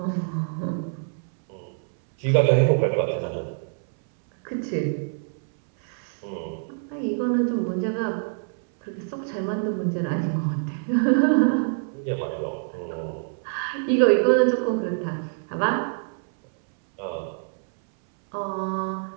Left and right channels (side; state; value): left; silent; 61 dB below the other